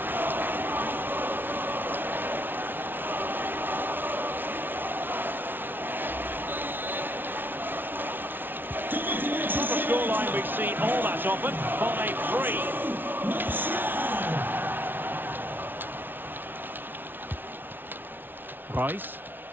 On the scoreline, we see all that often. 5-3. Reus.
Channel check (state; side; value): late; left; 0.096 ms